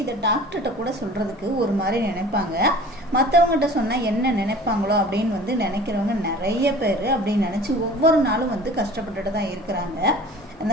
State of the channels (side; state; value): both; normal; correlation 0.44